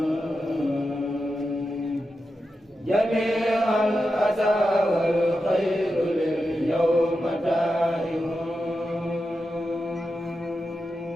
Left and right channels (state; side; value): normal; both; correlation 0.90